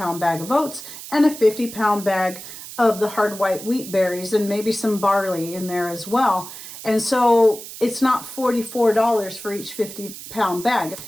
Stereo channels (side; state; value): right; noise; hiss, 13 dB below the sound